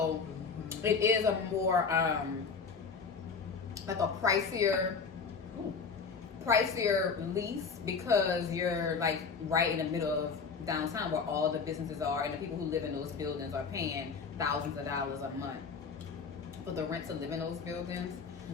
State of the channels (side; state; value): right; quieter; 5.3 dB